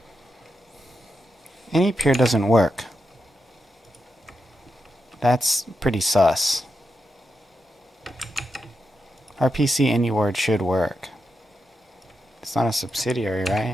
Any peer doesn't work. That's pretty sus. RPC any word should work. It's not a subsidiary,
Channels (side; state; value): both; normal; correlation 0.86